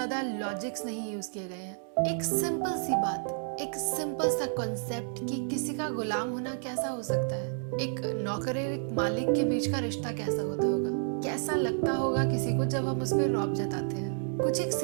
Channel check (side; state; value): left; silent; digital silence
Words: लॉजिक्स नहीं यूज किए गए हैं। एक सिंपल सी बात, एक सिंपल सा कॉन्सेप्ट कि किसी का गुलाम होना कैसा हो सकता है, एक नौकर और एक मालिक के बीच का रिश्ता कैसा होता होगा, कैसा लगता होगा किसी को जब हम उस पर रौब जताते हैं। कुछ एक